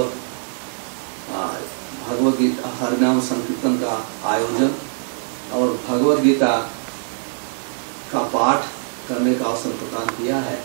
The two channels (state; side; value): silent; left; 64 dB below the other